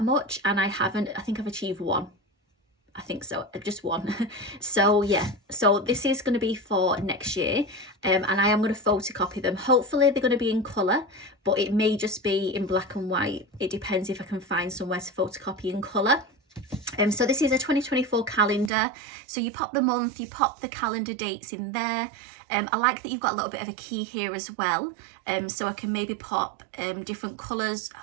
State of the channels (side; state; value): left; drops out; at 18.7 s